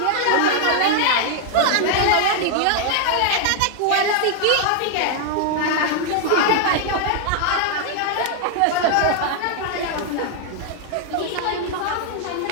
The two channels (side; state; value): both; different; correlation 0.00